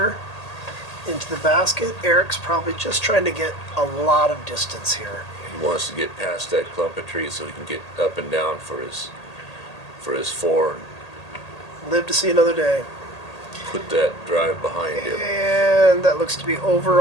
into the basket. Eric's probably just trying to get a lot of distance here. He wants to get past that clump of trees so he can get up and down for his 4 and Live to see another day. put that drive behind him. And that looks to be over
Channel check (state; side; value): late; right; 1.8 ms